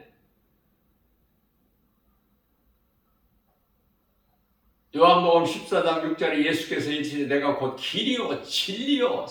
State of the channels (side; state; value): both; identical; correlation 1.00